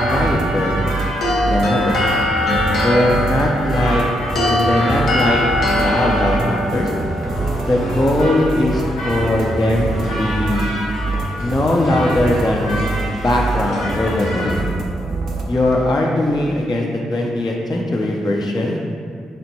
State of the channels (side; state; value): both; normal; correlation 0.79